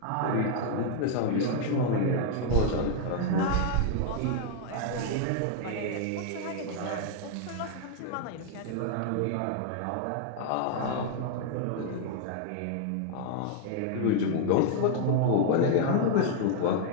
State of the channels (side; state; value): both; different; correlation 0.00